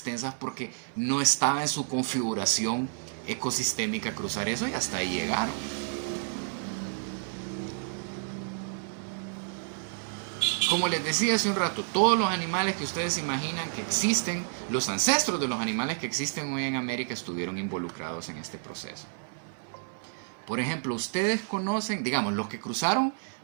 porque no estaba en su configuración ecosistémica cruzar eso y hasta ahí llegaron. Como les decía hace un rato, todos los animales que ustedes imaginan que existen, los ancestros de los animales que existen hoy en América estuvieron involucrados en este proceso. Por ejemplo, ustedes conocen, digamos, los que cruzaron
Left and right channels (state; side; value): silent; left; 58 dB below the other